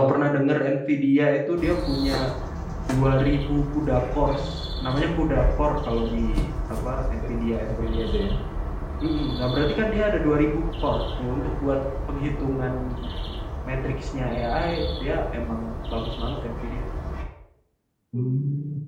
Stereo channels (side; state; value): both; identical; correlation 1.00